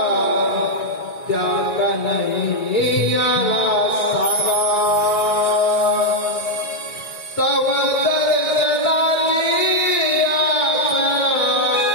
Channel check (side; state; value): right; late; 1.9 ms